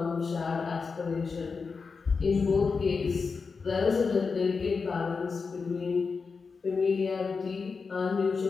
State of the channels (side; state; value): right; quieter; 4.9 dB